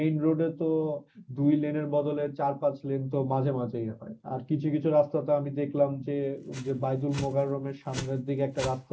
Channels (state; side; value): identical; both; correlation 1.00